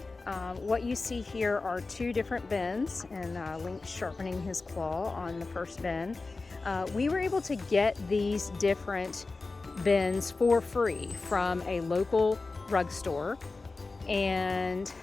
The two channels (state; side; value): quieter; right; 3.7 dB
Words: What you see here are two different bins, and Lynx sharpening his claw on the first bin. We were able to get these different bins for free from a local rug store, and